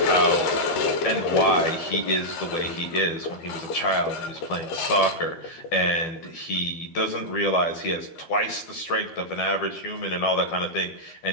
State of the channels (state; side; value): late; right; 12 ms